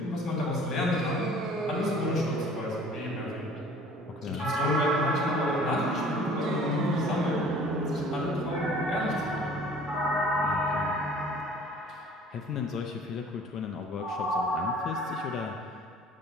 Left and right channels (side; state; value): both; normal; correlation 0.50